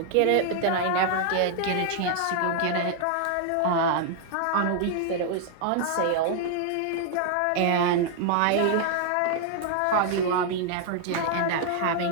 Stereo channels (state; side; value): different; both; correlation 0.00